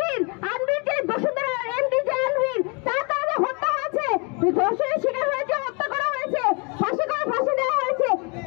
আনবির যে বসুন্ধরা এমডি যে আনবির, তার তাহলে হত্যা হয়েছে, ধর্ষণের শিকার হয়েছে, হত্যা করা হয়েছে, ফাঁসি দেওয়া হয়েছে,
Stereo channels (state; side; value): quieter; right; 32.2 dB